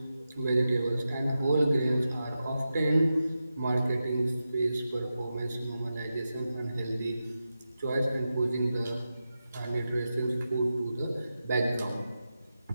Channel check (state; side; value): inverted; both; correlation -0.91